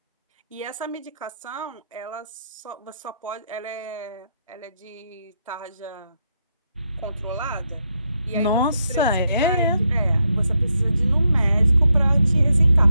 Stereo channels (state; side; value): inverted; both; correlation -0.81